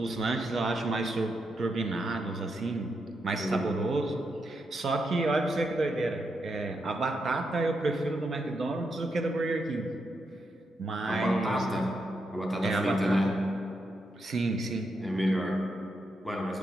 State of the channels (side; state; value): both; normal; correlation 0.83